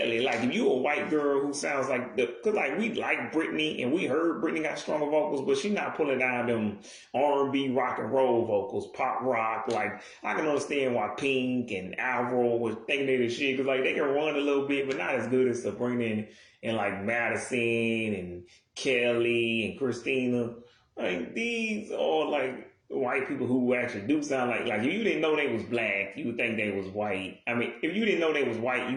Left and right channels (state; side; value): identical; both; correlation 1.00